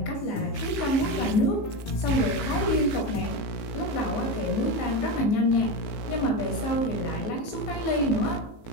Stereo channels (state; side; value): late; right; 19 ms